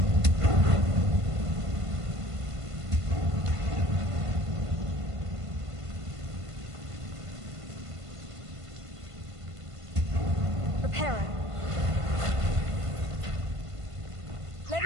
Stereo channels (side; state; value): left; late; 1.5 ms